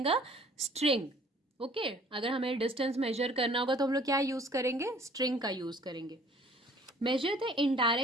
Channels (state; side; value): normal; both; correlation 0.54